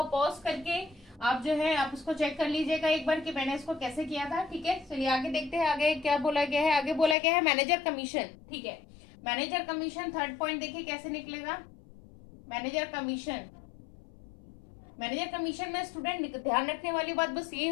पॉज करके आप जो है आप उसको चेक कर लीजिएगा एक बार कि मैंने इसको कैसे किया था। ठीक है, चलिए आगे देखते हैं। आगे क्या बोला गया है? आगे बोला गया है मैनेजर कमीशन। ठीक है, मैनेजर कमीशन थर्ड पॉइंट देखिए कैसे निकलेगा। मैनेजर कमीशन, मैनेजर कमीशन में स्टूडेंट ध्यान रखने वाली बात बस ये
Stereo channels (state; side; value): drops out; right; at 7.2 s